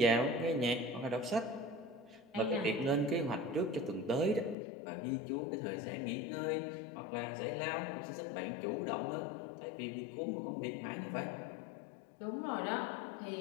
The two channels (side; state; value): right; drops out; at 4.5 s